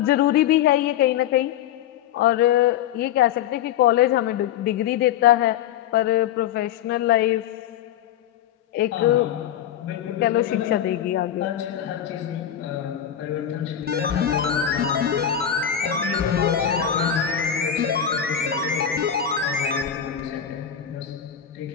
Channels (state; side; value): quieter; right; 9.8 dB